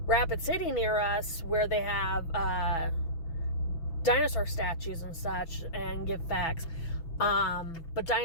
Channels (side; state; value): right; late; 6.0 ms